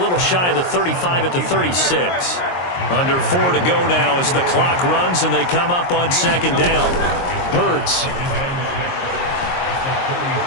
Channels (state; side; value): late; right; 22 ms